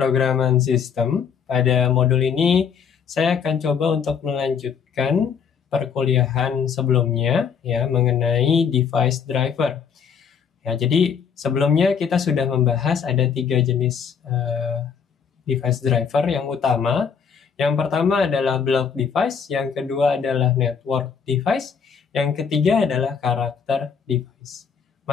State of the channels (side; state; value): right; quieter; 6.8 dB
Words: sistem. Pada modul ini, saya akan coba untuk melanjutkan perkuliahan sebelumnya ya mengenai device driver. Ya, jadi sebelumnya kita sudah membahas ada 3 jenis device driver yang utama. Yang pertama adalah block device, yang kedua adalah network device, yang ketiga adalah karakter device.